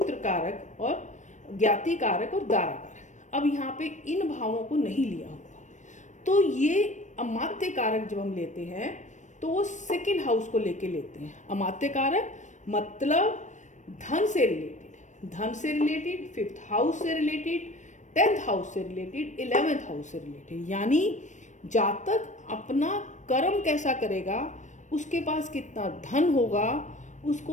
कारक और ज्ञाति कारक और दारा कारक। अब यहाँ पे इन भावों को नहीं लिया होगा, तो ये अमात्य कारक जब हम लेते हैं तो वो सेकंड हाउस को लेके लेते हैं। अमात्य कारक मतलब धन से रिलेटेड, 5th हाउस से रिलेटेड, 10th हाउस से रिलेटेड, 11th हाउस से रिलेटेड, यानी जातक अपना कर्म कैसा करेगा, उसके पास कितना धन होगा,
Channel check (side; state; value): right; late; 0.35 ms